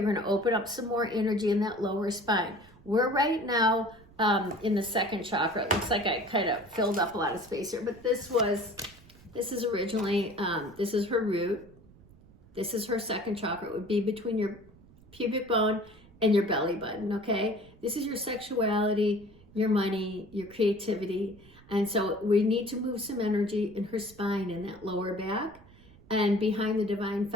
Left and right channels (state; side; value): noise; right; rumble, 24 dB below the sound